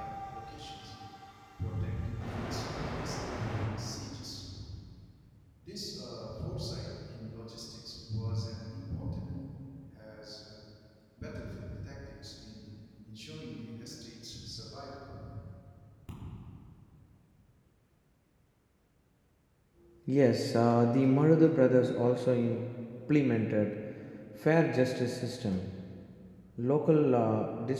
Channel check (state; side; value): identical; both; correlation 1.00